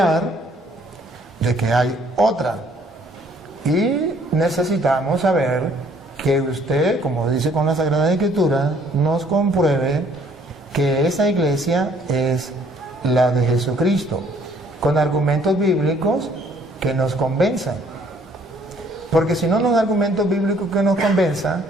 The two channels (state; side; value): normal; both; correlation 0.61